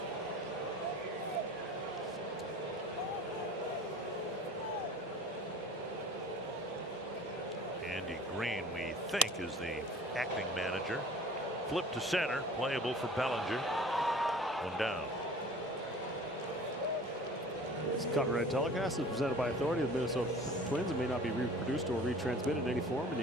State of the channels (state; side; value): normal; both; correlation 0.44